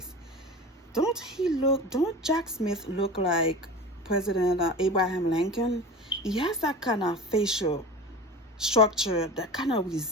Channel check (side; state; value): both; normal; correlation 0.33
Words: Don't Jack Smith look like President Abraham Lincoln? He has that kind of facial structure that kind of